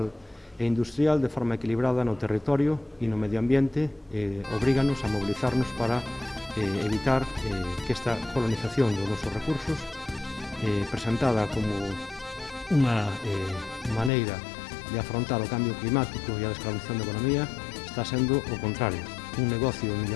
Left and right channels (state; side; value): drops out; right; at 14.1 s